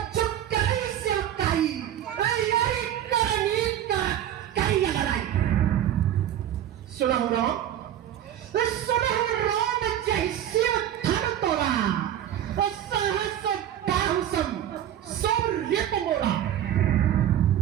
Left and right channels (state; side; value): quieter; left; 11.0 dB